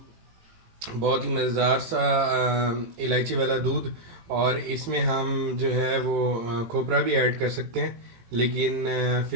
बहुत ही मज़ेदार सा इलायची वाला दूध। और इसमें हम जो है वो खोपरा भी ऐड कर सकते हैं, लेकिन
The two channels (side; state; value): left; late; 18 ms